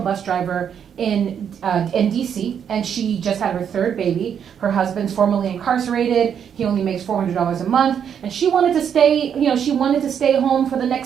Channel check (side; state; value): left; quieter; 8.1 dB